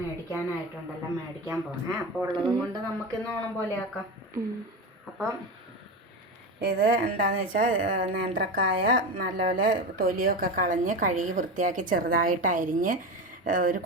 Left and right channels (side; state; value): both; normal; correlation 0.22